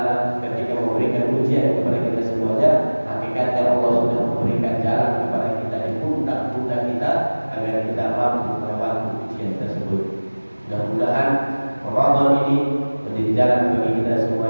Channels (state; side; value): inverted; both; correlation -1.00